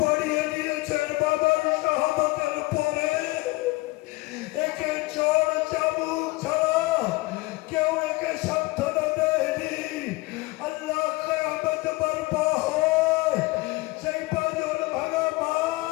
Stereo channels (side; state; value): right; quieter; 22.5 dB